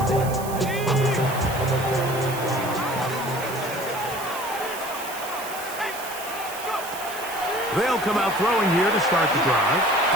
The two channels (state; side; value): noise; right; hiss, 12 dB below the sound